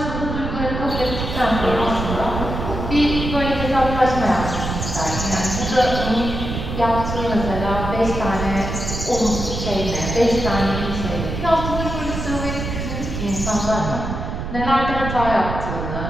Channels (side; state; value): right; noise; rumble, 5 dB below the sound